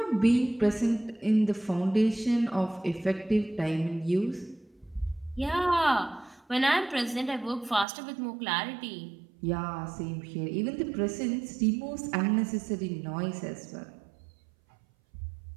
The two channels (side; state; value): left; drops out; at 7.9 s